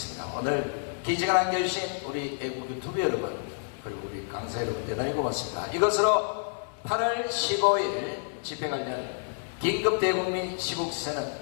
오늘 기지가 남겨주신 우리 애국 유튜브 여러분 그리고 우리 강사 여러분 대단히 고맙습니다. 이것으로 8월 15일 집회 관련 긴급 대국민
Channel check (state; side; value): silent; right; digital silence